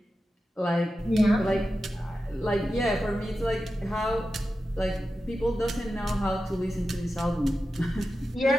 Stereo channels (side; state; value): both; normal; correlation 0.91